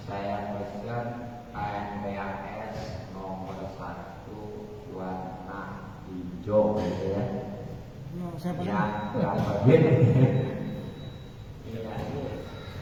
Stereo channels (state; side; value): identical; both; correlation 1.00